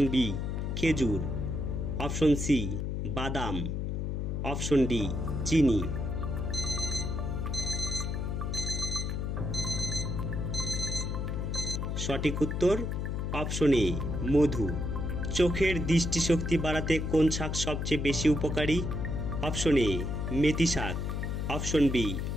বি খেজুর, অপশন সি বাদাম, অপশন ডি চিনি। সঠিক উত্তর অপশন এ মধু। চোখের দৃষ্টিশক্তি বাড়াতে কোন শাক সবচেয়ে বেশি উপকারী? অপশন এ মেথি শাক, অপশন বি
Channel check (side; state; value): left; noise; hum, 2 dB below the sound